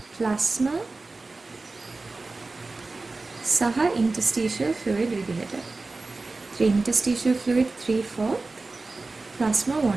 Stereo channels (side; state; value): left; quieter; 3.5 dB